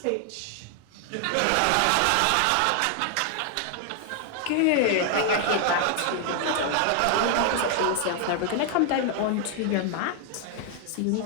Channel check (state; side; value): different; both; correlation 0.00